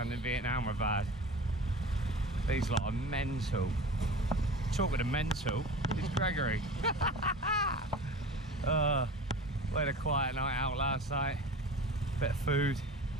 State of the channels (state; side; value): normal; both; correlation 0.36